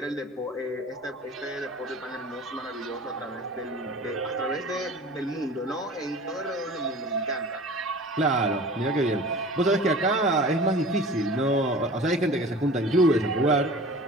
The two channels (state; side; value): normal; both; correlation 0.41